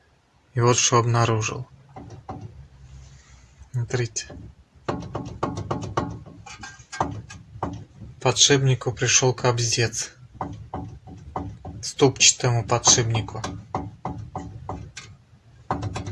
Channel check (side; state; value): both; identical; correlation 1.00